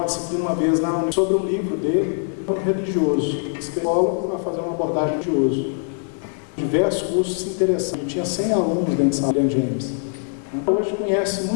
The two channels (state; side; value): silent; right; 61 dB below the other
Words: disciplina uma vez sobre um livro dele, um religioso, psicólogo, para fazer uma abordagem religiosa. Diversos cursos interessantes. Eu tinha 100 alunos dentro de William James. Hoje conhece